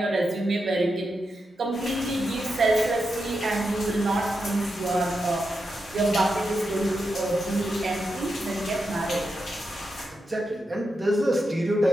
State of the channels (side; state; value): both; normal; correlation 0.87